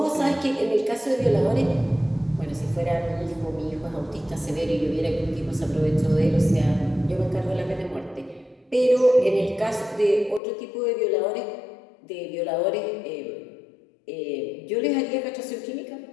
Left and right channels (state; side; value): drops out; right; at 10.4 s